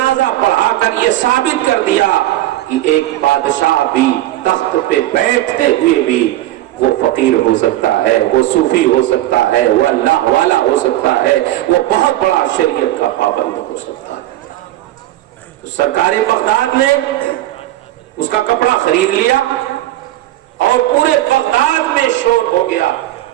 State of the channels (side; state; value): left; quieter; 15.0 dB